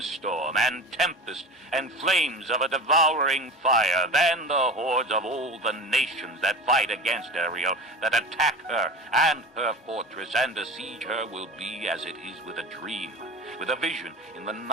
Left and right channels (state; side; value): normal; both; correlation 0.32